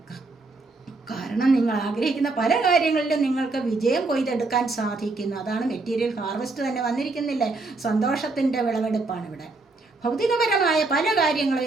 കാരണം നിങ്ങൾ ആഗ്രഹിക്കുന്ന പല കാര്യങ്ങളിലും നിങ്ങൾക്ക് വിജയം കൊയ്തെടുക്കാൻ സാധിക്കുന്നു. അതാണ് മെറ്റീരിയൽ ഹാർവെസ്റ്റ് തന്നെ വന്നിരിക്കുന്നില്ലേ? സന്തോഷത്തിൻ്റെ വിളവെടുപ്പാണ് ഇവിടെ. ഭൗതികപരമായ പല കാര്യങ്ങളും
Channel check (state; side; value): quieter; left; 3.5 dB